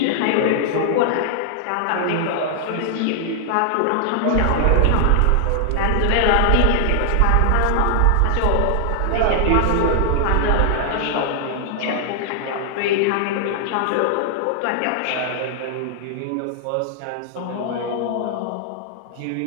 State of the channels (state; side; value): different; both; correlation -0.01